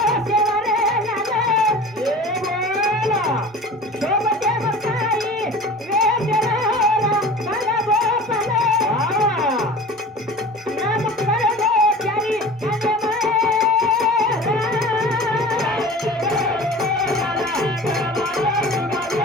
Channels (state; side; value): normal; both; correlation 0.38